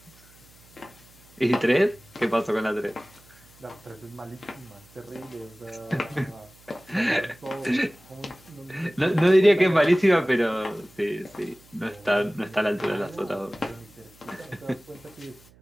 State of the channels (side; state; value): right; noise; hum, 27 dB below the sound